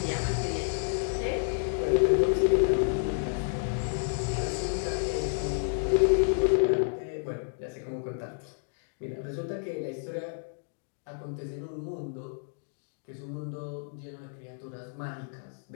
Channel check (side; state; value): right; silent; digital silence